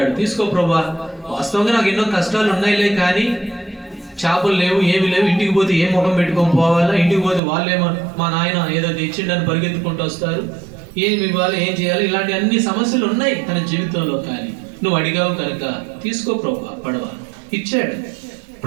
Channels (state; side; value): drops out; left; at 7.4 s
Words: తీసుకో ప్రభా, వాస్తవంగా నాకు ఎన్నో కష్టాలు ఉన్నాయిలే కానీ చేపలు లేవు, ఏమి లేవు, ఇంటికి పోతే ఏ ముఖం పెట్టుకొని పోవాలా, ఇంటికి పోతే వాళ్ళేమో మా నాయన ఏదో తెచ్చిండని పరిగెత్తుకుంటూ వస్తారు, ఏమి ఇవ్వాలి, ఏం చేయాలి, ఇలాంటి అన్ని సమస్యలు ఉన్నాయి తన జీవితంలో. కానీ నువ్వు అడిగావు కనుక తీసుకో ప్రభా పడవ. ఇచ్చాడు.